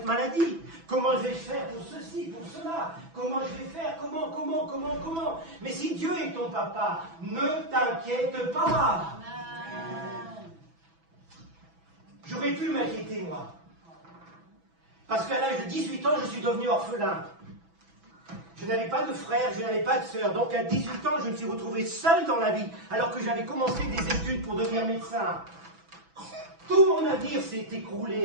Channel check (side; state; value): left; late; 6.0 ms